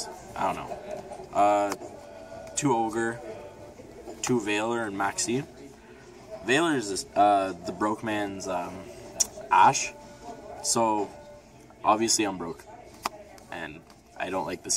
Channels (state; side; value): identical; both; correlation 1.00